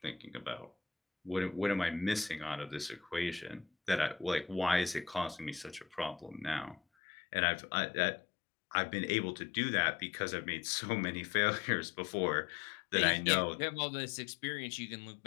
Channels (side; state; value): right; drops out; at 6.8 s